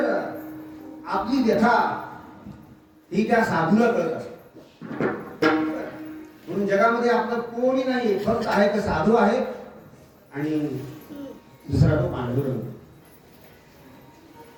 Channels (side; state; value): both; identical; correlation 1.00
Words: आपली व्यथा ही त्या साधूला कळत असते. म्हणून जगामध्ये आपलं कोणी नाही, फक्त आहे तर साधू आहे आणि दुसरा तो पांडुरंग.